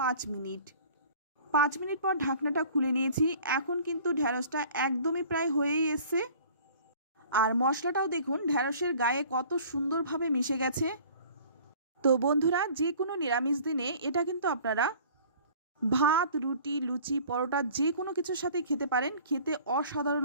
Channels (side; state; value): both; inverted; correlation -0.49